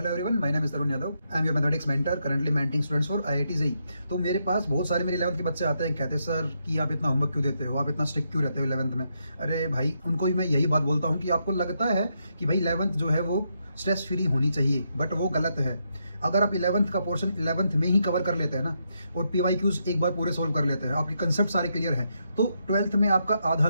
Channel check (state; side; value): inverted; both; correlation -0.80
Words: everyone, my name is Tarun Yadav, I am your mathematics mentor, currently mentoring students for IIT JEE. तो मेरे पास बहुत सारे मेरे 11th के बच्चे आते हैं, कहते हैं सर कि आप इतना होमवर्क क्यों देते हो, आप इतना स्ट्रिक्ट क्यों रहते हो 11th में? अरे भाई, उनको भी मैं यही बात बोलता हूँ कि आपको लगता है कि भाई 11th जो है वो स्ट्रेस फ्री होनी चाहिए, बट वो गलत है। अगर आप 11th का पोर्शन 11th में ही कवर कर लेते हैं ना, और PYQs एक बार पूरे सोल्व कर लेते हैं, आपकी कंसेप्ट सारे क्लियर हैं, तो 12th में आपका आधा